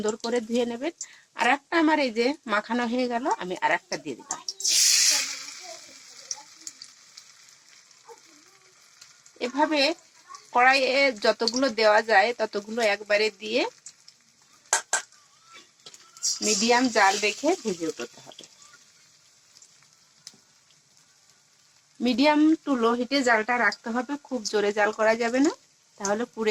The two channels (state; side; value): identical; both; correlation 1.00